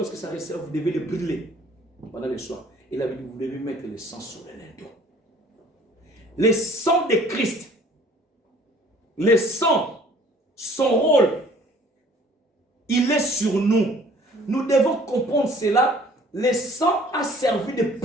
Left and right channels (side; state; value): both; normal; correlation 0.54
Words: ça reste, vous devez le brûler pendant le soir. Et la Bible dit, vous devez mettre le sang sur le linteau. Le sang de Christ, le sang, son rôle, il est sur nous. Nous devons comprendre cela. Le sang a servi de